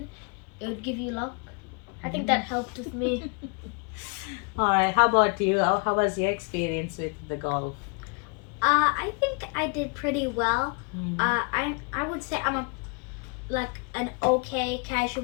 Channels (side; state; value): right; quieter; 34.9 dB